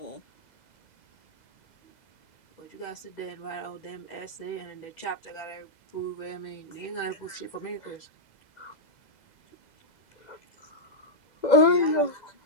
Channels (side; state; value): right; late; 2.0 ms